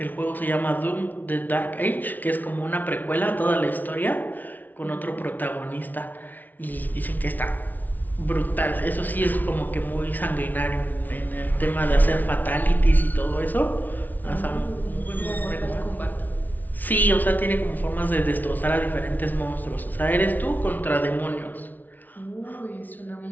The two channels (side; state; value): right; late; 0.081 ms